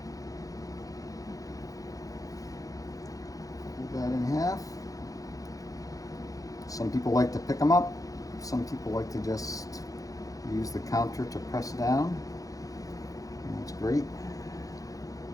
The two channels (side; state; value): right; late; 0.17 ms